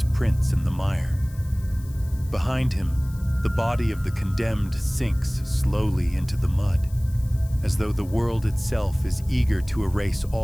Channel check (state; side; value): noise; left; hiss, 23 dB below the sound